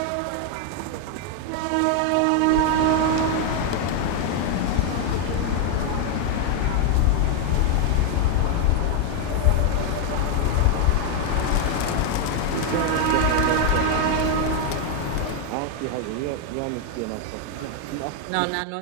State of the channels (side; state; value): both; different; correlation 0.01